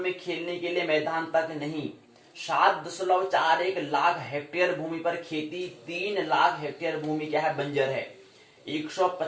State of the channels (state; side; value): identical; both; correlation 1.00